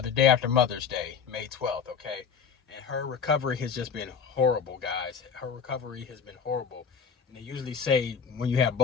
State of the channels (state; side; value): quieter; right; 6.7 dB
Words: day after Mother's Day, May 12th, okay? And her recovery has just been horrible, guys. Her recovery has been horrible. And they usually say when you have